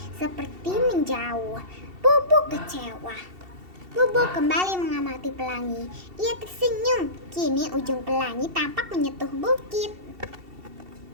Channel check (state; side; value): late; left; 2.7 ms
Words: seperti menjauh. Bobo kecewa. Bobo kembali mengamati pelangi. Ia tersenyum. Kini ujung pelangi tampak menyentuh bukit.